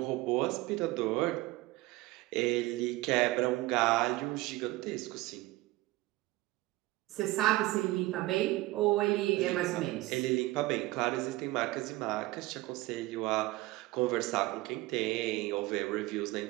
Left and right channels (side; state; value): left; quieter; 19.3 dB